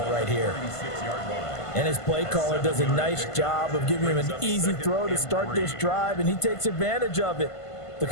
right here. And his play caller does a nice job of giving him an easy throw to start this drive, and he takes advantage of it. The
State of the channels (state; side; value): late; right; 1.5 ms